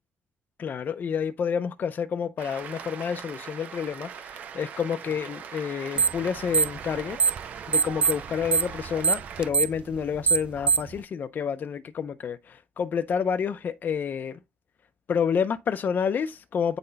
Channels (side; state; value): both; normal; correlation 0.18